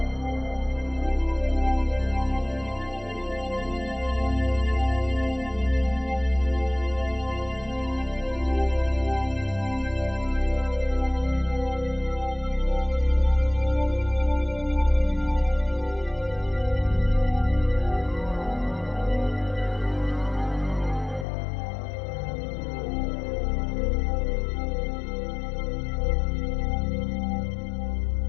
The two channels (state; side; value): drops out; right; at 21.2 s